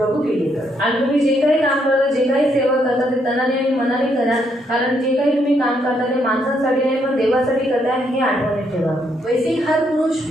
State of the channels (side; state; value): both; normal; correlation 0.74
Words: के लिए कर. आणि तुम्ही जे काही काम करता, जे काही सेवा करता ते तनाने आणि मनाने करा, कारण जे काही तुम्ही काम करता ते माणसांसाठी नाही पण देवासाठी करता हे आठवणीत ठेवा. वैसे ही हर पुरुष